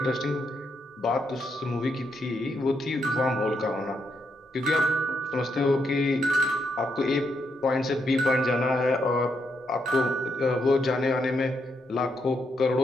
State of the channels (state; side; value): normal; both; correlation 0.79